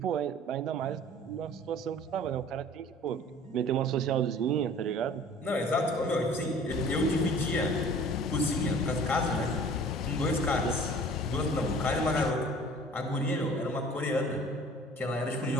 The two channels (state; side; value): normal; both; correlation 0.47